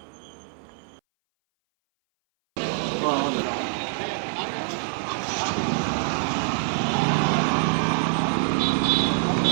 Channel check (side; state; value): left; silent; 59 dB below the other